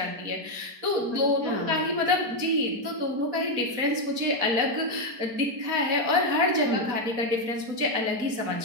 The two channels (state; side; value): late; left; 4.2 ms